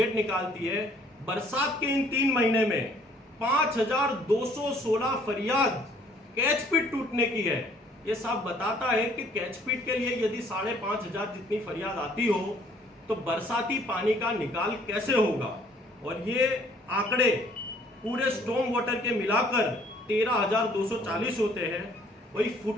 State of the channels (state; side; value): normal; both; correlation 0.60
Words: निकालती है, बरसात के इन 3 महीने में 5216 फरियाद कैच पिट टूटने की है। ये साफ बताता है कि कैच पिट के लिए यदि 5500 जितनी फरियाद आती हो तो बरसाती पानी का निकाल कैसे होगा। और ये आंकड़े पूरे स्टॉर्म वाटर के मिलाकर 13,240 होते हैं। वही